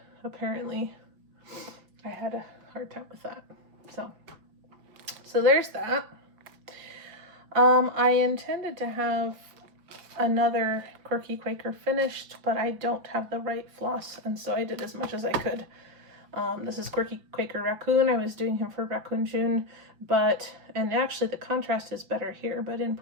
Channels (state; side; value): late; left; 5.3 ms